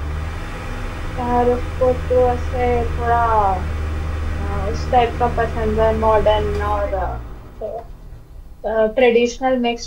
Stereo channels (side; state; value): both; identical; correlation 1.00